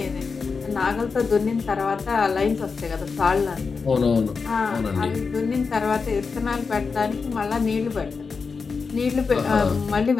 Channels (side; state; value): right; quieter; 5.0 dB